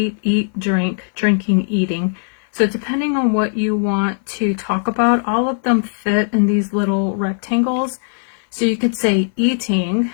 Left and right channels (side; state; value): right; silent; 58 dB below the other